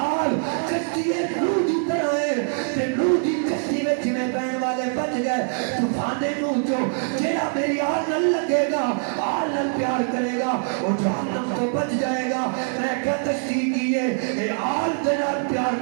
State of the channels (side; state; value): left; silent; 61 dB below the other